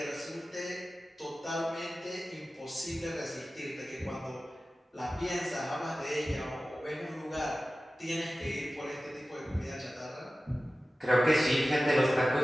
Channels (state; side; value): normal; both; correlation 0.95